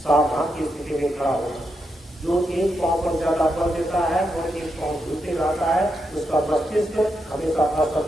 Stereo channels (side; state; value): both; normal; correlation 0.83